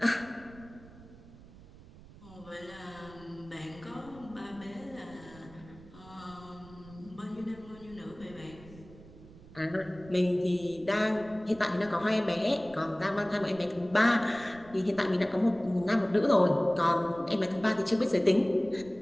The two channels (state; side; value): noise; right; rumble, 20 dB below the sound